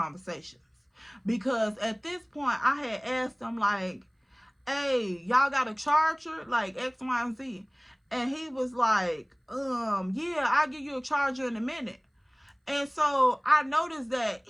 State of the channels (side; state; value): both; identical; correlation 1.00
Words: Because at this point, I had asked them like, hey, y'all got a charger? Like X, Y, and Z. And he was like, yeah, I'll give you a charger in a minute. And so I noticed that